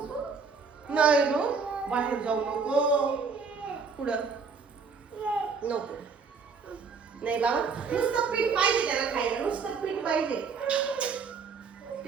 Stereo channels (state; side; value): quieter; left; 5.2 dB